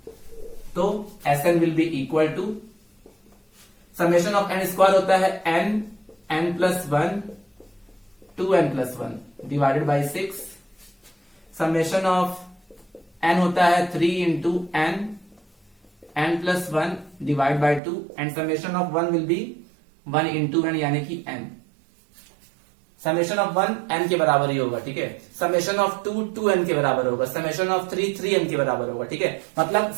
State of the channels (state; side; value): drops out; left; at 17.8 s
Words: तो Sn will be equal to summation of n square होता है n plus 1 2n plus 1 divided by 6। Summation of n होता है 3 into n plus 1 divide by 2 and summation of 1 will be 1 into n यानी कि n। समेशन ऑफ 1 n के बराबर ही होगा। ठीक है, समेशन ऑफ 2 2n के बराबर होगा, समेशन ऑफ 3 3n के बराबर होगा। ठीक है, मतलब